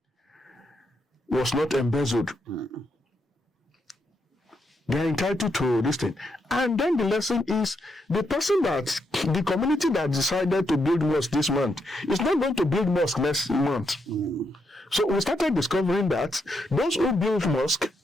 was not embezzled. They are entitled to this thing. And then the lesson is the community that decided to build mosque this month is not going to build mosque next month. So we started discovering that those who build mosque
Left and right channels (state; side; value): normal; both; correlation 0.80